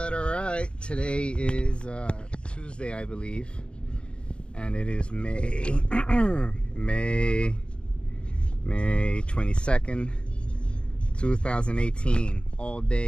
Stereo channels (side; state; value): right; late; 0.056 ms